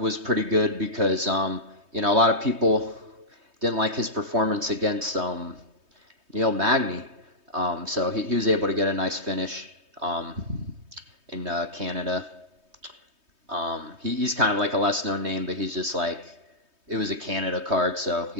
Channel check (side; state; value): left; late; 3.2 ms